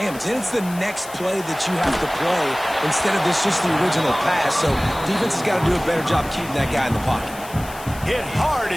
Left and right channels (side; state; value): left; noise; hiss, 17 dB below the sound